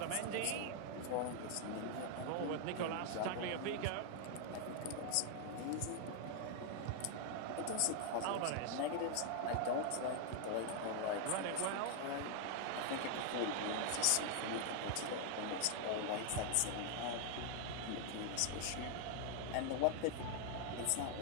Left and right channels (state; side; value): different; both; correlation 0.00